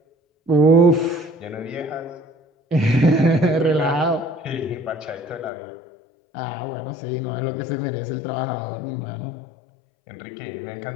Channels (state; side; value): drops out; right; at 5.5 s